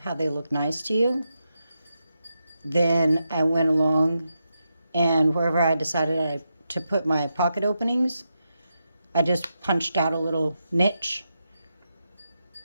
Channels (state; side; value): inverted; both; correlation -0.86